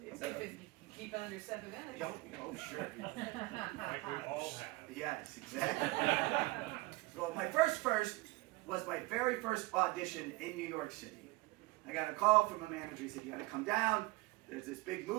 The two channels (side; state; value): left; quieter; 21.6 dB